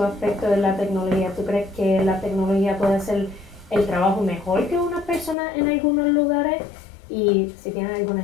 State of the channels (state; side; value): drops out; right; at 5.4 s